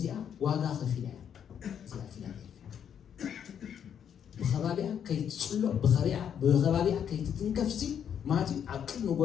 واقع خفيلة زيها فيلة بخبابيها كي تصلو بخبابيها كي تتنكفسي ماتي عقل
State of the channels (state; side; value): quieter; right; 8.5 dB